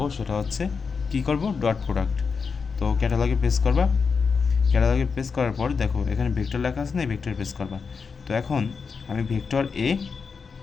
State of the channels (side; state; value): right; quieter; 5.4 dB